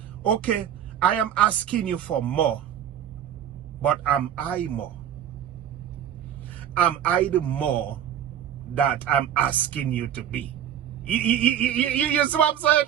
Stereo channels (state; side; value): quieter; left; 9.9 dB